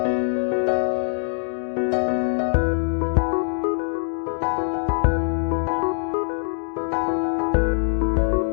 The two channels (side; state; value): right; silent; digital silence